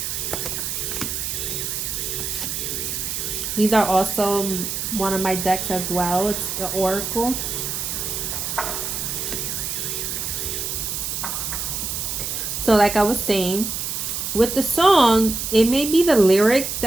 These are also one of my decks as well. It's the Oracle. So like I was saying, with the song, it may be the lyric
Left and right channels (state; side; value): noise; right; hiss, 3 dB below the sound